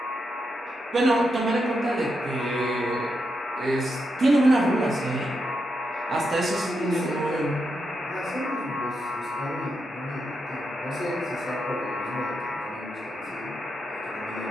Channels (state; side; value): normal; both; correlation 0.84